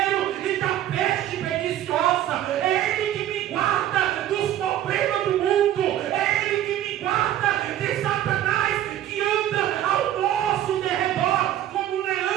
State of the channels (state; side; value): quieter; left; 12.3 dB